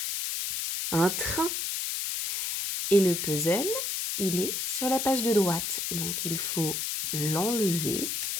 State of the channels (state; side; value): noise; left; hiss, 1 dB below the sound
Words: un train. Et le puzzle, il est sur la page de droite. Donc, il faut l'enlever.